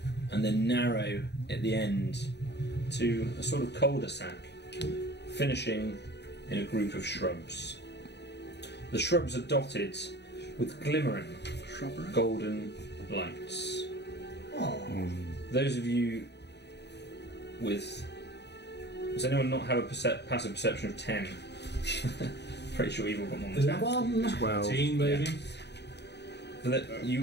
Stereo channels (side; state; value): right; late; 0.50 ms